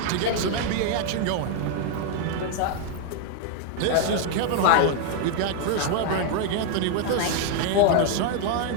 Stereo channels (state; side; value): different; both; correlation 0.00